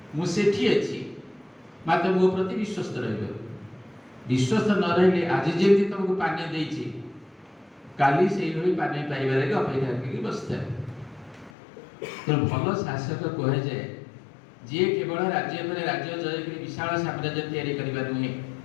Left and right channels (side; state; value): right; drops out; at 11.5 s